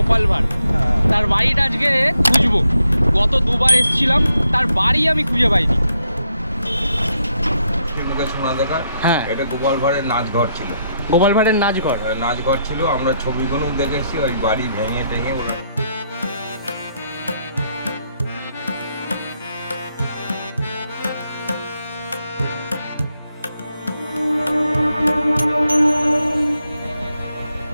ভাঁড়, তার বাড়িটা আজকে খুঁজবো। গত দুবার এসেছিলাম, তার বাড়ি আমি খুঁজে পাইনি। শোনা দেখা, হ্যাঁ, এটা গোপাল ভাঁড়ের নাচঘর ছিল। গোপাল ভাঁড়ের নাচঘর নাচঘর ছিল, আমরা ছবিগুলো দেখেছি। ওই বাড়ি ভেঙে টেঙে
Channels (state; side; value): inverted; both; correlation -0.78